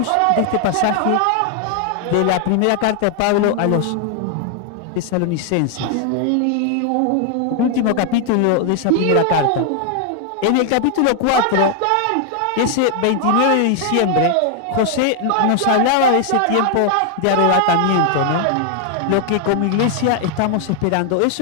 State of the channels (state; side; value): different; both; correlation 0.00